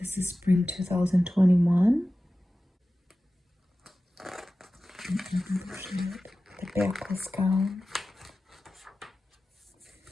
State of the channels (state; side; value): normal; both; correlation 0.95